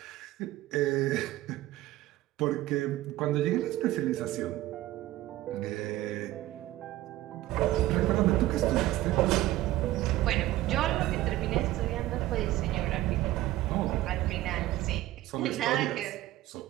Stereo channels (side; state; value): left; quieter; 15.9 dB